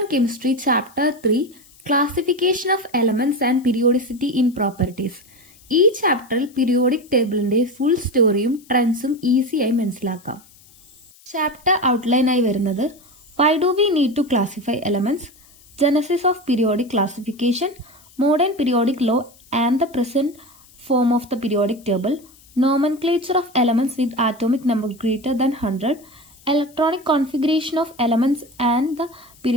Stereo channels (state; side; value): noise; left; hiss, 27 dB below the sound